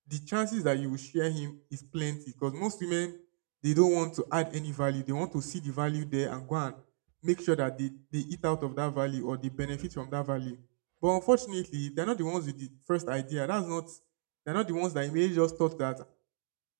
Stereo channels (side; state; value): left; silent; 55 dB below the other